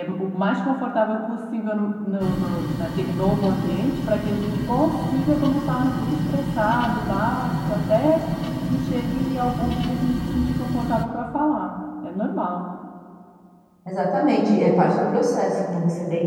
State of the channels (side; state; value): both; identical; correlation 1.00